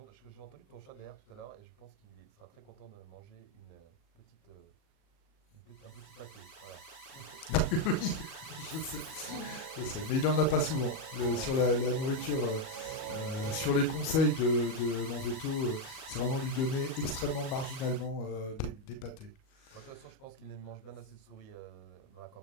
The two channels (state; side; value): late; right; 37 ms